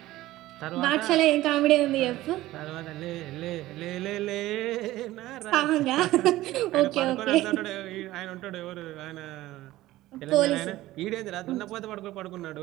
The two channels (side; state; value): left; quieter; 16.4 dB